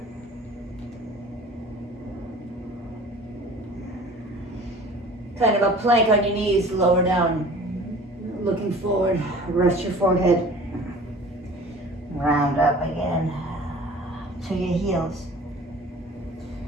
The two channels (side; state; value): both; normal; correlation 0.45